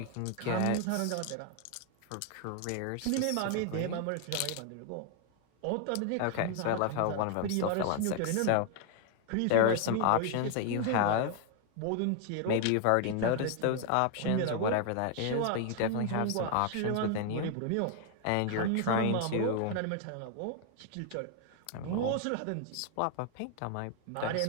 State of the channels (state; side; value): different; both; correlation 0.00